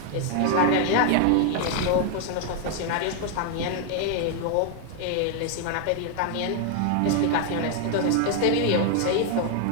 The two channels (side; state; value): both; different; correlation 0.00